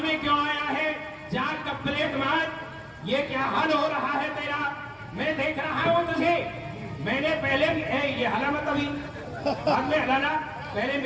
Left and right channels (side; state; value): both; identical; correlation 1.00